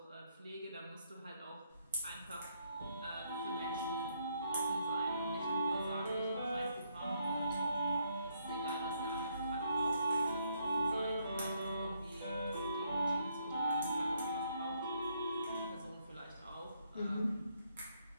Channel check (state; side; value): inverted; both; correlation -0.73